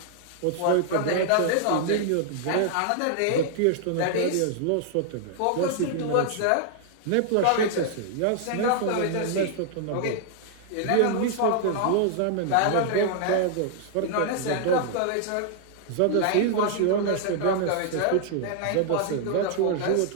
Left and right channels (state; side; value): different; both; correlation -0.01